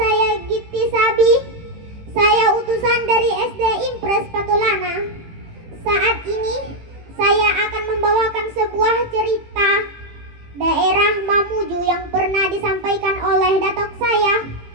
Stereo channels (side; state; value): left; late; 18 ms